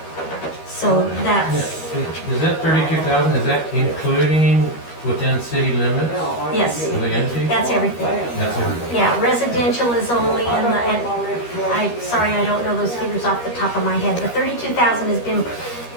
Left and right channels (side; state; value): right; late; 13 ms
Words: So that's, Is that 32,000, is that including within city limits yes, of the entity? that's everything. That's everything. Yeah, residential is only in sorry, I don't know those figures off the top of my head. The 32,000